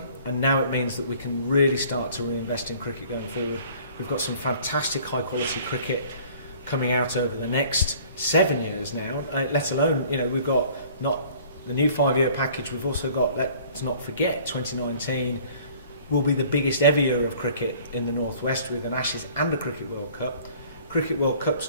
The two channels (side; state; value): both; inverted; correlation -0.52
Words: and now it means that we can really start to reinvest in cricket going forward. We've got some fantastic high quality cricket coming out over the next 7 years now, let alone, you know, we've got not the new 5 year package, we've also got, let's not forget, 2019 will be the biggest ever year of cricket in the Northwest, with an Ashes and a Cricket World Cup. Cricket World Cup's